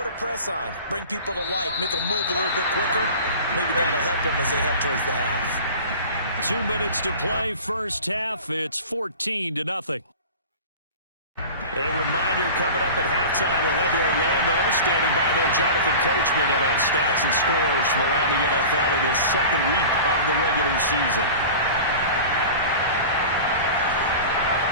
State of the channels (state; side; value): inverted; both; correlation -0.36